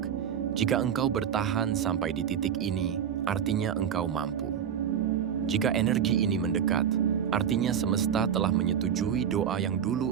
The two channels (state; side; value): quieter; left; 8.6 dB